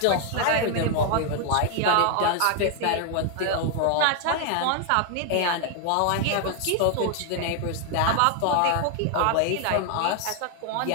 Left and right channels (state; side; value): different; both; correlation 0.00